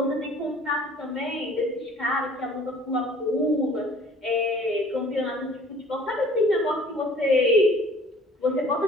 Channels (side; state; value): both; normal; correlation 0.52